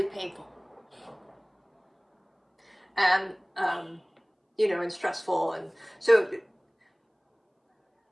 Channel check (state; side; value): identical; both; correlation 1.00